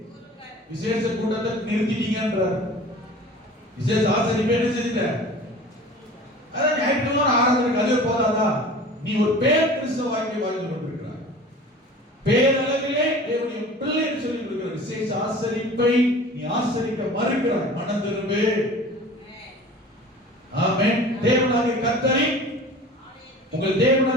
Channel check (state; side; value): normal; both; correlation 0.41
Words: விசேஷ கூட்டத்தை நிறுத்திட்டீங்கன்றார். விசேஷ ஆசரிப்பு என்ன செய்யுங்க? அதான் ஞாயிற்றுக்கிழமை ஆராதனைக்கு அதுவே போதாதா? நீ ஒரு பேர் கிறிஸ்தவ வாழ்க்கை வாழ்ந்து கொண்டிருக்கிறாய். பேரளவிலே தேவனுடைய பிள்ளை என்று சொல்லி கொடுக்கிற விசேஷ ஆசரிப்பை நீ ஆசரிக்க மறுக்கிறாய். மனம் திரும்பு. ஆமென். தேவனாகிய கர்த்தரை, உங்கள்